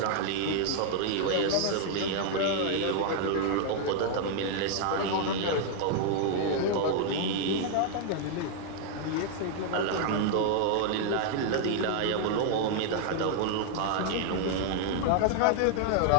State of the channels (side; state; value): both; different; correlation 0.00